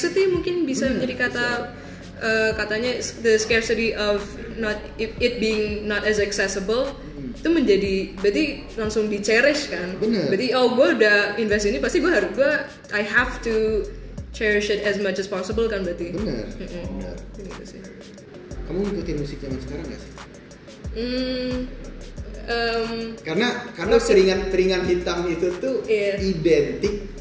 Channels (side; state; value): both; identical; correlation 1.00